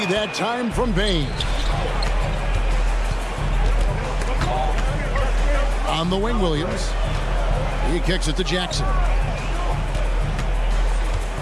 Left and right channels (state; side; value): identical; both; correlation 1.00